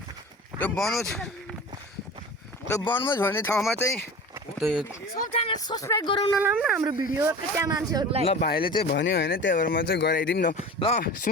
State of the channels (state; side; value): normal; both; correlation 0.36